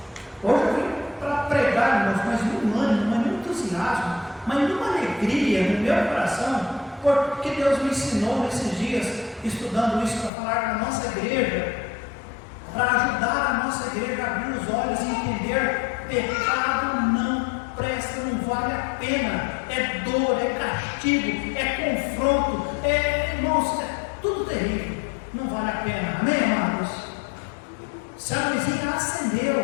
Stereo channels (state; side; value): drops out; right; at 10.3 s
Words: Hoje eu vim para pregar, irmãos, mas num ânimo, mas num entusiasmo, mas numa alegria no meu coração, porque Deus me ensinou nesses dias, estudando isso para falar na nossa igreja, para ajudar a nossa igreja a abrir os olhos e entender: pecado não presta, não vale a pena, é dor, é castigo, é confronto, irmãos, é tudo terrível, não vale a pena. Amém, amados? Se a luzinha